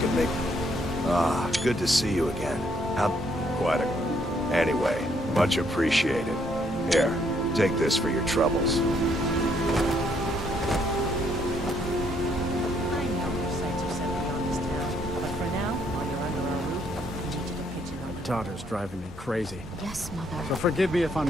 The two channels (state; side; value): normal; both; correlation 0.70